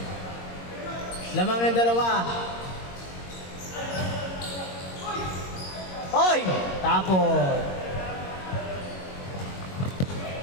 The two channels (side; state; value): right; late; 22 ms